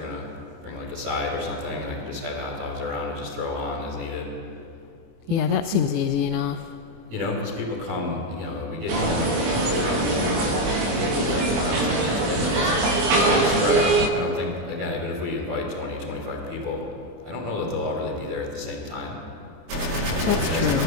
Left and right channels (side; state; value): left; late; 24 ms